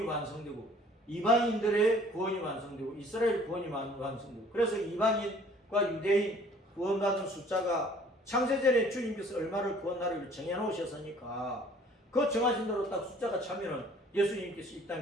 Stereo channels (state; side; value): normal; both; correlation 0.54